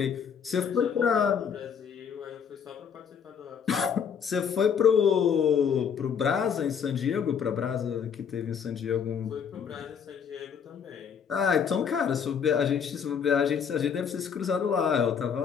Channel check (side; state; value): right; quieter; 7.2 dB